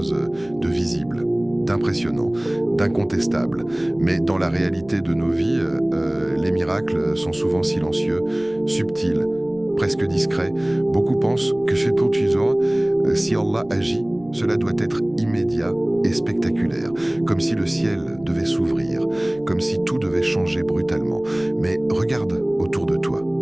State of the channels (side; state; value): right; noise; rumble, 26 dB below the sound